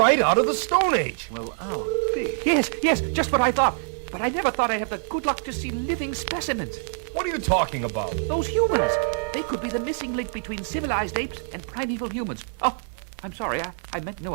out of the Stone Age! Well, oh, Pete. Yes, just what I thought. But I never thought I'd have the good luck to see living specimens. What are you talking about? Those humans. They could be the missing link between civilized apes and primeval humans. Oh, I'm sorry. I meant no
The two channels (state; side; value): silent; left; digital silence